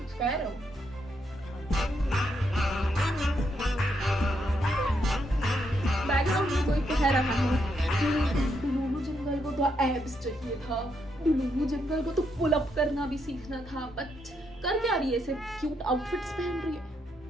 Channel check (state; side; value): normal; both; correlation 0.78